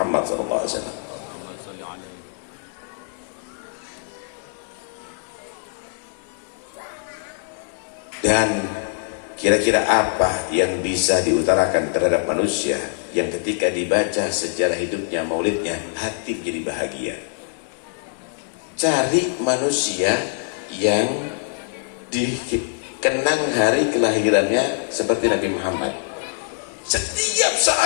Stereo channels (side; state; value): right; silent; 63 dB below the other